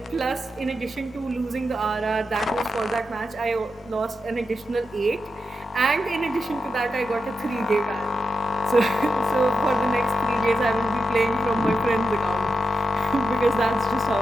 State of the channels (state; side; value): normal; both; correlation 0.87